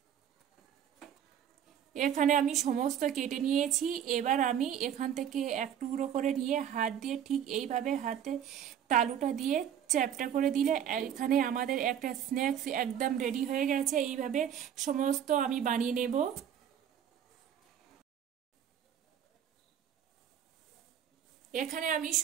এখানে আমি সমস্ত কেটে নিয়েছি। এবার আমি এখান থেকে এক টুকরো করে নিয়ে হাত দিয়ে ঠিক এইভাবে হাতে তালুটা দিয়ে চ্যাপটা করে দিলে এখানে আমাদের একটা স্ন্যাক্স একদম রেডি হয়ে গেছে। এইভাবে সমস্ত আমি বানিয়ে নেব। এখানে আমি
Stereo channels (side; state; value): left; quieter; 9.3 dB